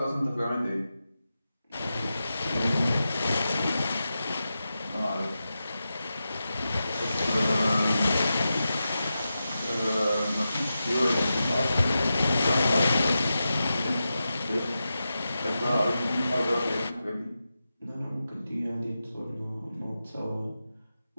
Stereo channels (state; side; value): inverted; both; correlation -0.91